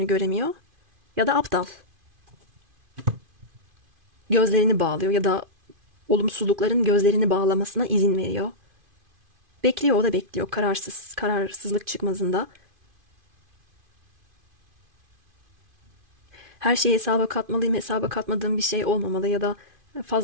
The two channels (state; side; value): late; left; 2.5 ms